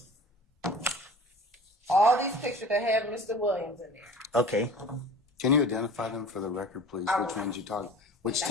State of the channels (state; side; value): normal; both; correlation 0.40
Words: all these pictures that have Mr. Williams in there. Okay. Can you identify them for the record, please? I Which will. ones you talk? Which